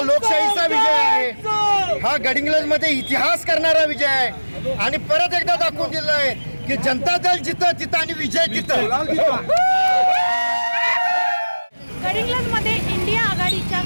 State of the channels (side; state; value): both; inverted; correlation -1.00